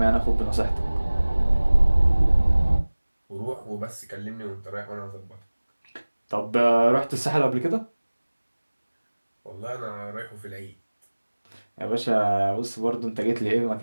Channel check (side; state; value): both; inverted; correlation -1.00